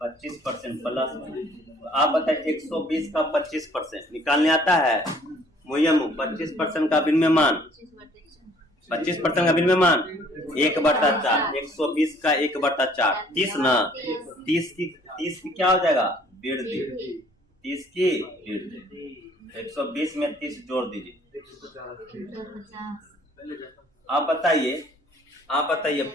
25% प्लस में। आप बताइए 120 का 25% निकालने आता है, मुयम 25% का विनिर्माण, 25% का विनिर्माण 1/4, 120 का 1/4, 30 ना, 30 की क्या हो जाएगा वृद्धि, 30 की वृद्धि, 120 में 30 जोड़ दीजिए। आप बताइए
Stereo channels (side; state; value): both; normal; correlation 0.58